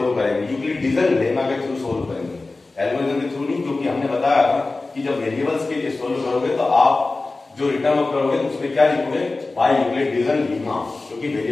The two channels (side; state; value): right; quieter; 3.4 dB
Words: करेंगे, यूक्लिड डिवीजन लेमा के थ्रू सोल्व करेंगे, एल्गोरिथम के थ्रू नहीं, क्योंकि हमने बताया था कि जब वेरिएबल्स के लिए सोल्व करोगे तो आप जो रिटर्न ऑफ करोगे तो उसमें क्या लिखोगे, बाय यूक्लिड डिवीजन लेमा, क्योंकि